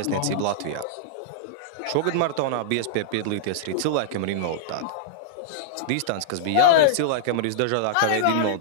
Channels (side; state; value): both; different; correlation -0.02